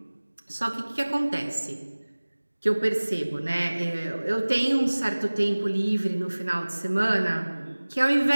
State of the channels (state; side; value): inverted; both; correlation -1.00